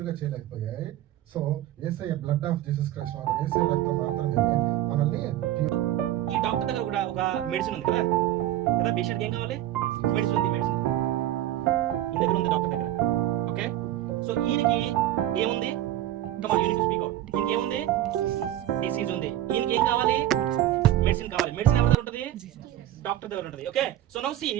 చేయలేకపోయాయి. So Yesayya blood of Jesus Christ Yesayya రక్తం మాత్రమే మనల్ని ప్యూర్. ఈ డాక్టర్ దగ్గర కూడా ఒక మెడిసిన్ ఉంది కదా కదా పేషెంట్కి ఏం కావాలి? మెడిసిన్ ఉంది. మెడిసిన్ ఈ దగ్గర ఉంది డాక్టర్ దగ్గర. ఓకే, సో ఈయనకి ఏముంది? కమాన్, యూనిట్ టు స్పీక్ అవుట్. ఈయనకి ఏముంది? డిసీజ్ ఉంది. ఈయనకి ఏం కావాలి? మెడిసిన్ కావాలి. మెడిసిన్ ఎవరి దగ్గర ఉంటుంది? డాక్టర్ దగ్గర ఉంటుంది. ఓకే, సో నౌ సీ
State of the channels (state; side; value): quieter; left; 13.1 dB